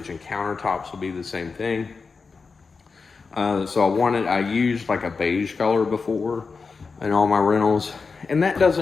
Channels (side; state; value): right; quieter; 4.7 dB